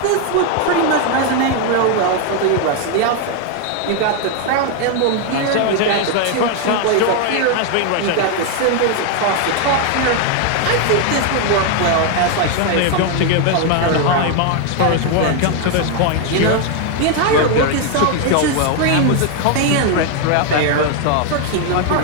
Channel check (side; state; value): both; different; correlation 0.01